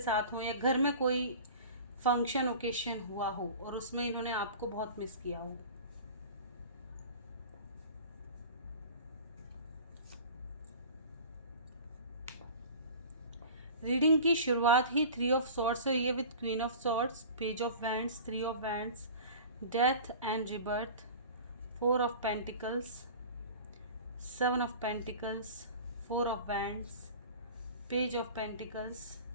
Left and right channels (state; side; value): inverted; both; correlation -0.39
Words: हो, या घर में कोई फंक्शन ओकेशन हुआ हो और उसमें इन्होंने आपको बहुत मिस किया हो। रीडिंग की शुरुआत ही 3 ऑफ सॉर्ड्स से ये with queen of swords, page of wands, 3 of wands, death and rebirth, 4 of pentacles, 7 of pentacles, 4 of wands, page of pentacles,